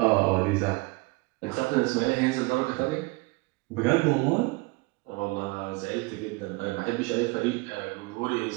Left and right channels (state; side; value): quieter; left; 26.1 dB